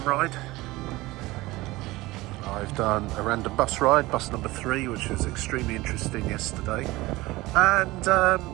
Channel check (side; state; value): left; quieter; 19.7 dB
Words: ride. I've done a random bus ride, bus number 3, which was extremely interesting yesterday. And